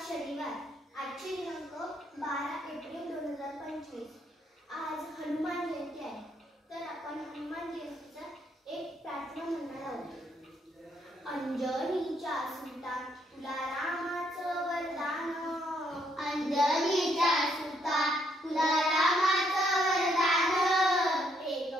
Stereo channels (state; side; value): normal; both; correlation 0.72